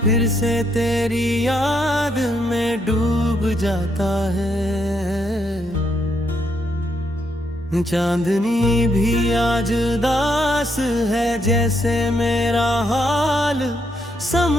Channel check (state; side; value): normal; both; correlation 0.76